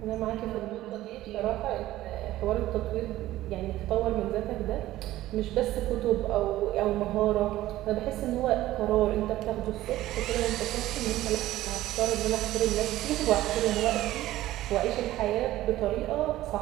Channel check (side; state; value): left; quieter; 15.3 dB